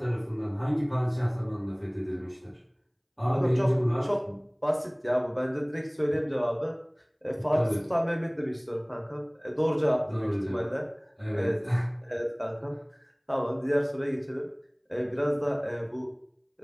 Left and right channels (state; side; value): identical; both; correlation 1.00